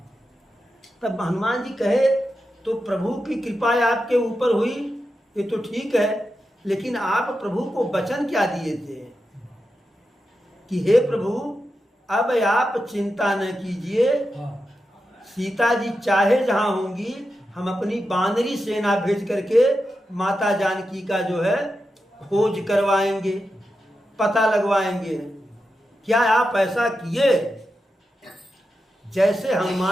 तब हनुमान जी कहे तो प्रभु की कृपा आपके ऊपर हुई, ये तो ठीक है, लेकिन आप प्रभु को वचन क्या दिए थे कि हे प्रभु अब आप चिंता न कीजिए, सीता जी चाहे जहां होंगी हम अपनी बानरी सेना भेज करके माता जानकी का जो है खोज करवाएंगे, पता लगवाएंगे। क्या आप ऐसा किए? जैसे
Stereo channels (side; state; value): both; normal; correlation 0.89